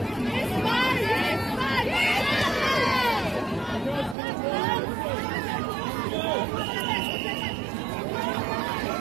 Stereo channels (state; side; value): drops out; left; at 4.2 s